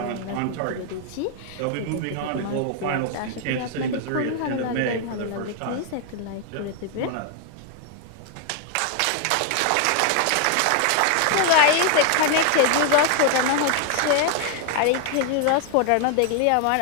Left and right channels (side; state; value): both; different; correlation 0.00